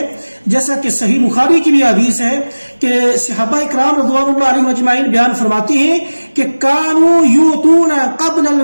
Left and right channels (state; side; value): inverted; both; correlation -1.00